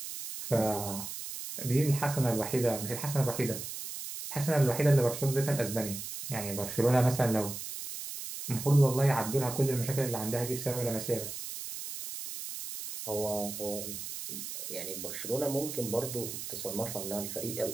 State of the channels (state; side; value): noise; right; hiss, 7 dB below the sound